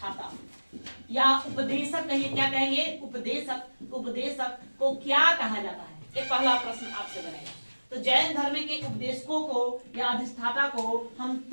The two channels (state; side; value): inverted; both; correlation -1.00